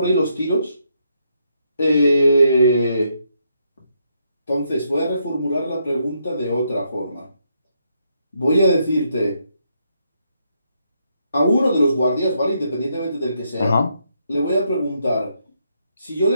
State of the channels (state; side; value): inverted; both; correlation -0.77